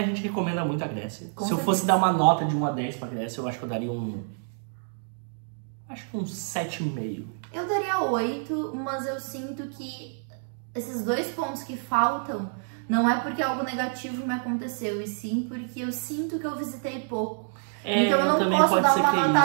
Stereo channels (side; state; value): left; silent; digital silence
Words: gente recomenda muito a Grécia. Com Se eu certeza. fosse dar uma nota de 1 a 10 pra Grécia, eu acho que eu daria acho que um 7,5. Eu daria 8, mas eu sinto que esses 2 pontos que faltam não é porque algo negativo me aconteceu, e sim porque eu sinto que eu visitei pouco. Então eu não posso dar uma